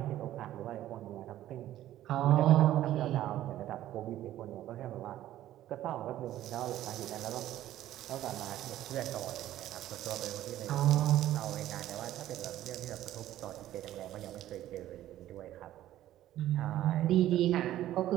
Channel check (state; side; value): quieter; left; 13.4 dB